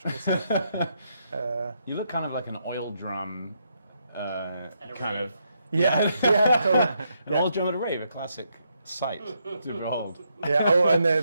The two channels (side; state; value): both; inverted; correlation -0.78